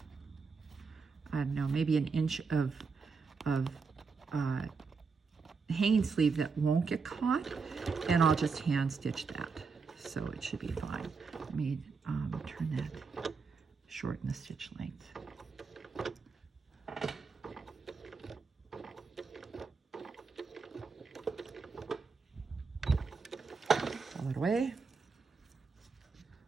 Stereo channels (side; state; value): left; quieter; 4.9 dB